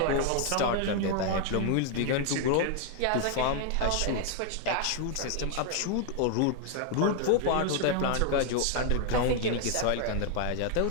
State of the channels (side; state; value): both; different; correlation 0.00